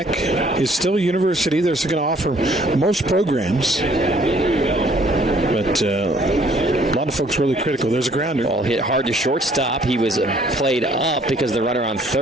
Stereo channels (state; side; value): normal; both; correlation 0.60